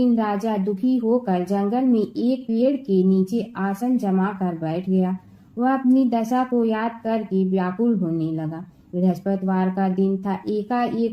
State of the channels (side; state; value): both; identical; correlation 1.00